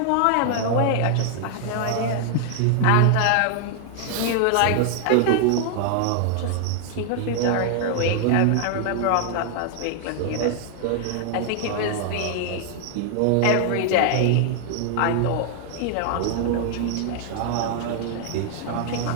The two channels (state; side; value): different; both; correlation 0.00